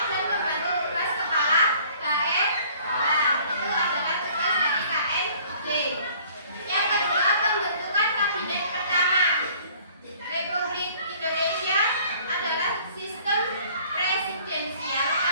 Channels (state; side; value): inverted; both; correlation -0.54